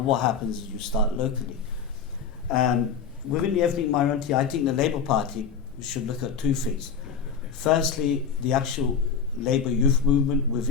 what happens is you start locally. Within the ethnic minority, I think the Labour Party should look at two things. Firstly, the actual Labour youth movement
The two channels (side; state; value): right; quieter; 6.5 dB